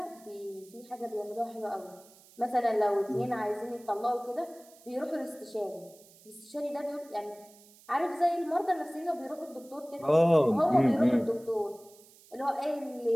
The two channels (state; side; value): noise; right; hiss, 25 dB below the sound